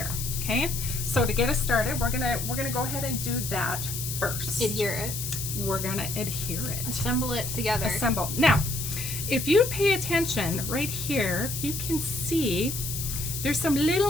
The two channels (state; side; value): noise; left; hiss, 5 dB below the sound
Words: Okay. So to get us started, we're gonna go ahead and do that first. Adhere it. We're gonna adhere it. Assemble it together. Assemble. Now, if you pay attention right here, you can see there's some